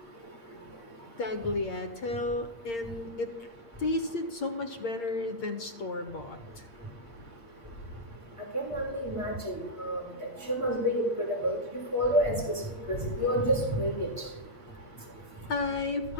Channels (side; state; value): right; late; 8.7 ms